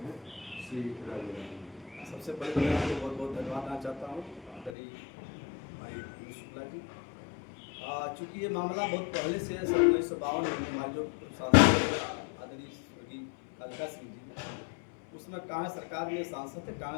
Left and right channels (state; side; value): drops out; right; at 4.8 s